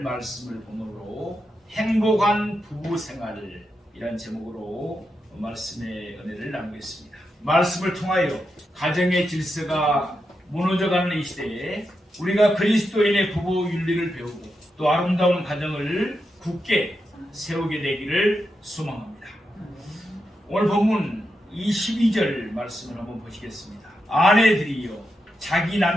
말씀을 본문으로 행복한 부부생활이란 제목으로 말씀의 은혜를 나누겠습니다. 말씀을 통하여 가정의 질서가 무너져가는 이 시대에 우리가 그리스도인의 부부 윤리를 배우고 또 아름다운 가정을 굳게 세우게 되기를 소망합니다. 오늘 본문 22절 말씀을 한번 보시겠습니다. 아내들이여 자기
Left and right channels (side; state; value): both; normal; correlation 0.86